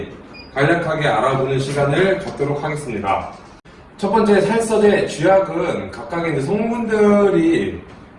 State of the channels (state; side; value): identical; both; correlation 1.00